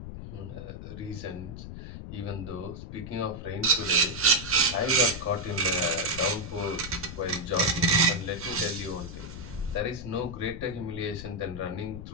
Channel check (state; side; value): noise; left; rumble, 10 dB below the sound